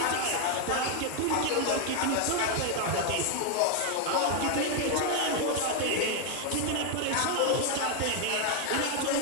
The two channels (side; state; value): both; different; correlation 0.01